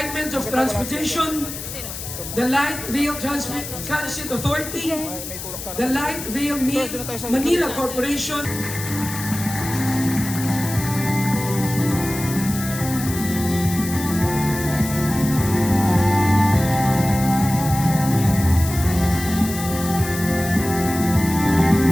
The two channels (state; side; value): noise; left; hiss, 9 dB below the sound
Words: of Transportation, the Light Rail Transit Authority, the Light Rail Manila Corporation.